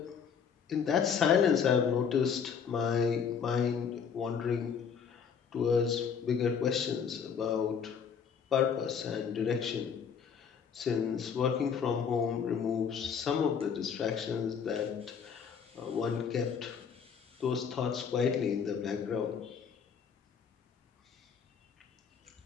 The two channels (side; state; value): right; quieter; 6.8 dB